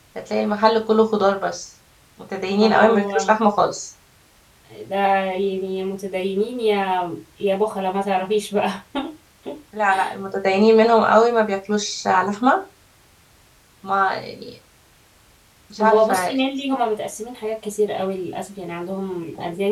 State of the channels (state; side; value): identical; both; correlation 1.00